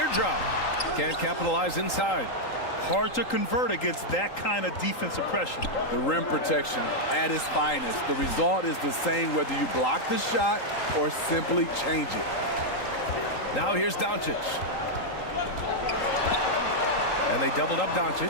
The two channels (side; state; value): right; late; 3.8 ms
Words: Can't capitalize inside. Hard to convert against that kind of defensive pressure. The rim protection at its finest. The result is the same whether you block the shot or simply change it. Now here's Doncic. And they doubled up